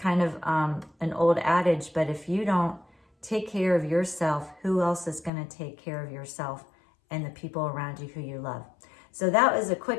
of an old adage, but if you don't take care of yourself, who else is going to take care of yourself and the people around you who you love? So that was a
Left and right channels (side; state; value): right; drops out; at 5.3 s